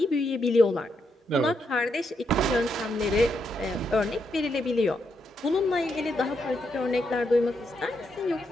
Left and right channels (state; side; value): normal; both; correlation 0.80